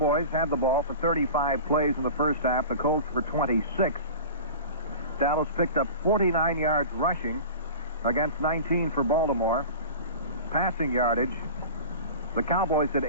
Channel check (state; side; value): inverted; both; correlation -0.35